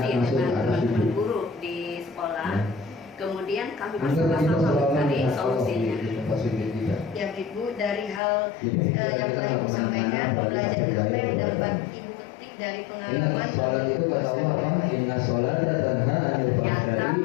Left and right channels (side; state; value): right; drops out; at 8.2 s